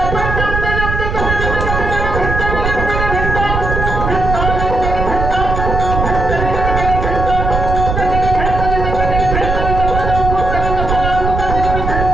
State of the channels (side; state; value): right; noise; rumble, 2 dB below the sound